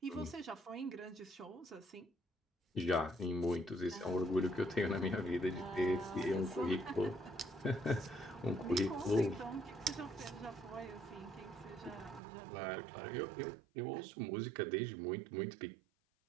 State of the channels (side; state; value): left; drops out; at 12.2 s